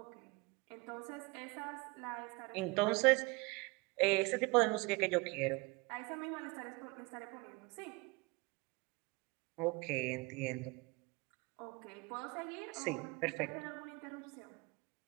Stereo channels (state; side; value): quieter; left; 25.3 dB